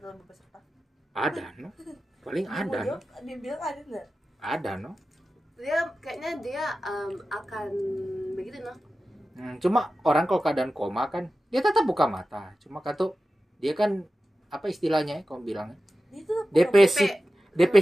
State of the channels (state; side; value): normal; both; correlation 0.94